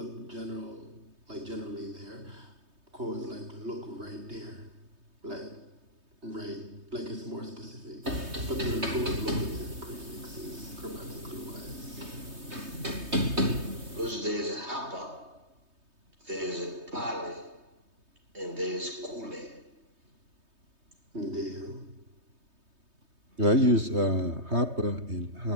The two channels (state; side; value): late; left; 3.2 ms